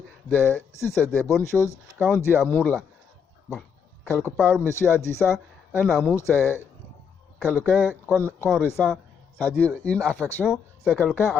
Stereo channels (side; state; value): right; quieter; 6.8 dB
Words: si c'est des bonnes choses. Quand on dit amour là, bon, quelque part, monsieur a dit ça, un amour c'est quelqu'un qu'on ressent, c'est-à-dire une affection, c'est quelqu'un